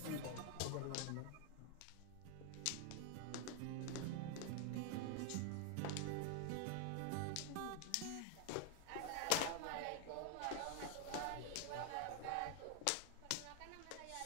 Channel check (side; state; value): both; different; correlation 0.00